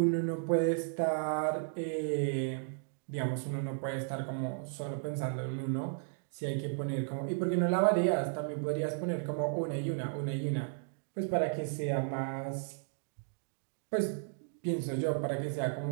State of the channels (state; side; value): silent; left; digital silence